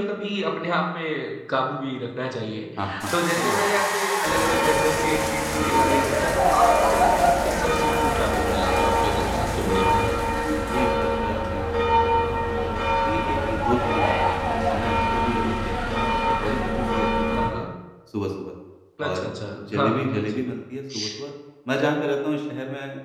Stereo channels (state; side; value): identical; both; correlation 1.00